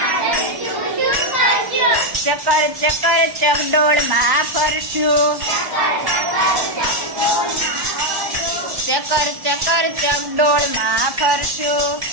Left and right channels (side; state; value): left; late; 1.1 ms